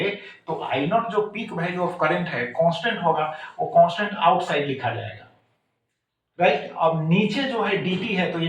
तो आई नॉट जो पीक वैल्यू ऑफ करंट है कांस्टेंट होगा, वो कांस्टेंट आउटसाइड लिखा जाएगा, राइट। अब नीचे जो है dt है तो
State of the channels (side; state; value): both; identical; correlation 1.00